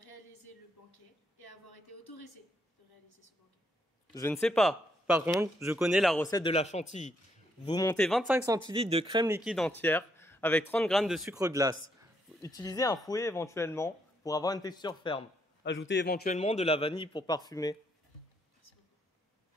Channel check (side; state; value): both; normal; correlation 0.75